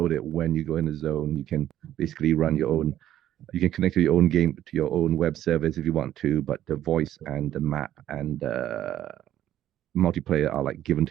it when you go in a zone. You can basically run your own. You can connect to your own game to your own web service if you want to, but the voice and the map and multiplayer are like given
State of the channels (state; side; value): quieter; left; 12.2 dB